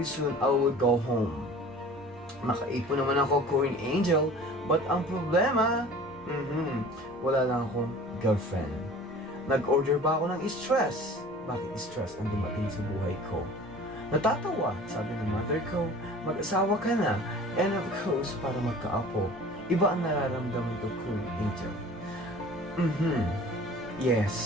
soon I will go home. Nakaipon naman ako, Queen Angel, but ang problema, wala lang akong girlfriend. Nag-order ba ako ng stress? Bakit stress ang dumating sa buhay ko? Natatawa, sabi ng mother ko, mag-asawa ka na, and of course, para magkaapo, iba ang nararamdaman ko, Queen Angel.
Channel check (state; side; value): noise; right; rumble, 27 dB below the sound